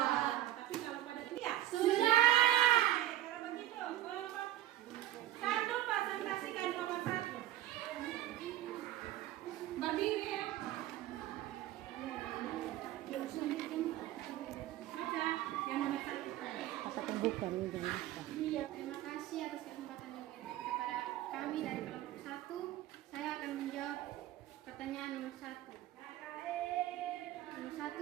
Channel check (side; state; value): left; quieter; 14.0 dB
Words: Tapi kalau pada dia sudah. Kalau begitu kelompok 1 presentasikan nomor 1. Berdiri ya. Baca yang nomor 1. Iya, terima kasih atas kesempatan yang diberikan kepada kami dari kelompok 1. Saya akan menjawab pertanyaan nomor 1. Nomor